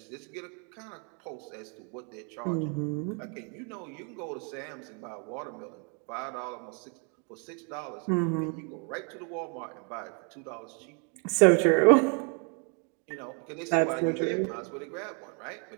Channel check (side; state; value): left; quieter; 37.6 dB